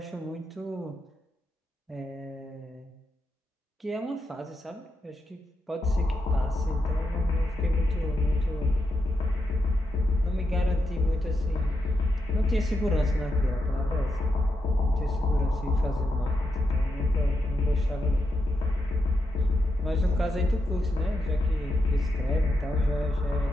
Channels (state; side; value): normal; both; correlation 0.85